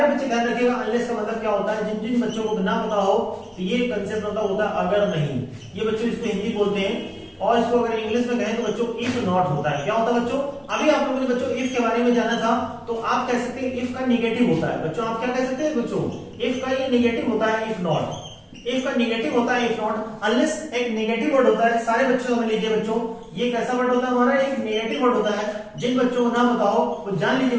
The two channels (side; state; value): both; identical; correlation 1.00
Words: बच्चे ध्यान रखिएगा, अनलेस का मतलब क्या होता है। जिन जिन बच्चों को ना पता हो तो ये कंसेप्ट होता है अगर नहीं। ये बच्चों इसको हिंदी बोलते हैं, और इसको अगर इंग्लिश में कहें तो बच्चों इफ नॉट होता है। क्या होता है बच्चों? अभी आप लोगों ने बच्चों इफ के बारे में जाना था, तो आप कह सकते हैं इफ का निगेटिव होता है बच्चों। आप क्या कह सकते हैं बच्चों? इफ का ये निगेटिव होता है, इफ नॉट। इफ का निगेटिव होता है, इफ नॉट। अनलेस एक नेगेटिव वर्ड होता है। सारे बच्चों समझ लीजिए बच्चों, ये कैसा वर्ड होता है हमारा? एक नेगेटिव वर्ड होता है। जिन बच्चों को ना पता हो वो जान लीजिए